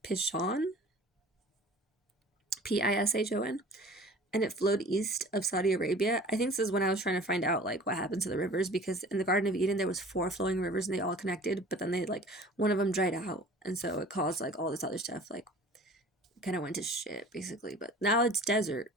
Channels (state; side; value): normal; both; correlation 0.45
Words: Pishon, Pishon, and it flowed east of Saudi Arabia. I think this is when I was trying to find out like what happened to the rivers, because in the Garden of Eden there was 4 flowing rivers and they all connected, but then they like one of them dried out, and so it caused like all this other stuff, like kind of went to shit basically. But now it's desert.